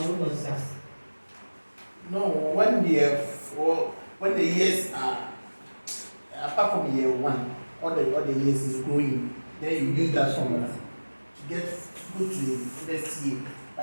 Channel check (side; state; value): both; inverted; correlation -1.00